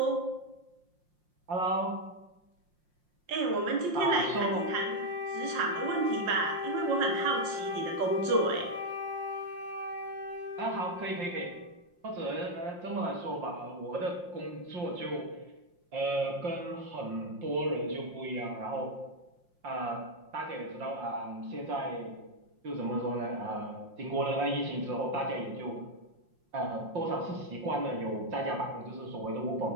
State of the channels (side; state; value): left; late; 5.6 ms